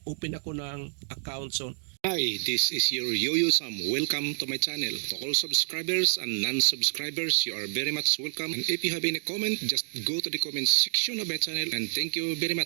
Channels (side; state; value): left; silent; digital silence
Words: ako ng account. So, hi, this is your Yo-Yo Sam. Welcome to my channel. To all subscribers and non-subscribers, you are very much welcome. And if you have any comment, just go to the comment section of my channel. And thank you very